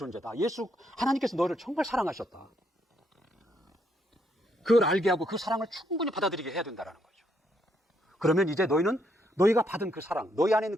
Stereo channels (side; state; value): both; normal; correlation 0.74